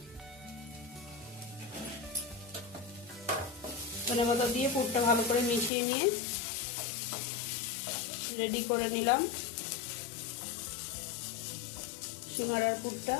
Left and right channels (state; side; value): drops out; right; at 5.7 s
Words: ধনেপাতা দিয়ে পুরটা ভালো করে মিশিয়ে নিয়ে রেডি করে নিলাম সিঙ্গাড়ার পুরটা।